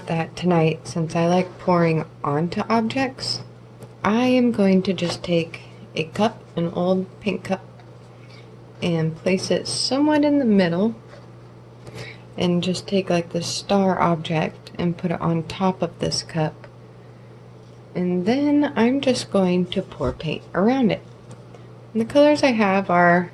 that tonight, since I like pouring onto objects, I am going to just take a cup, an old pink cup, and place it somewhat in the middle and just take like the star object and put it on top of this cup, and then I'm just going to pour paint around it. And the colors I have are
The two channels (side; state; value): both; identical; correlation 1.00